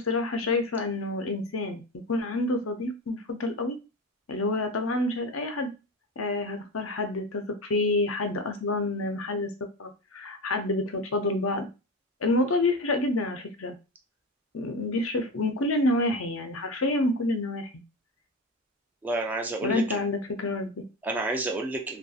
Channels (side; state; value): both; normal; correlation 0.24